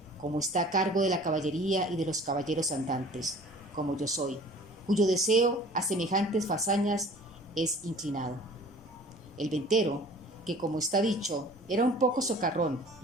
como está a cargo de la caballería y de los caballeros andantes, como yo soy, cuyo deseo a semejantes fazañas es inclinado». El ventero, que como está dicho, era un poco socarrón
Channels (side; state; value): both; normal; correlation 0.48